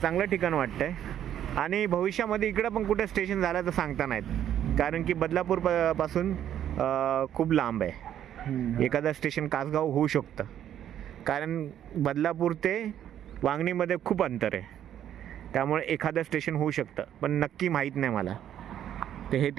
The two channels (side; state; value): left; quieter; 10.5 dB